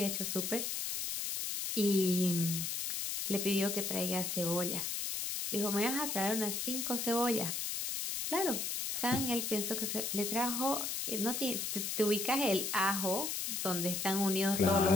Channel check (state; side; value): noise; left; hiss, 2 dB below the sound